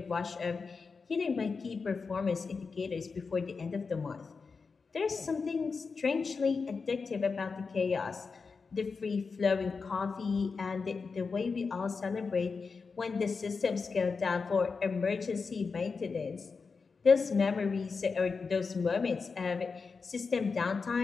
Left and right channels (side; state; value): right; quieter; 4.8 dB